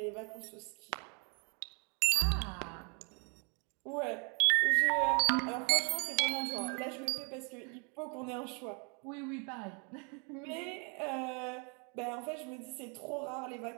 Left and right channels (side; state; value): left; quieter; 37.5 dB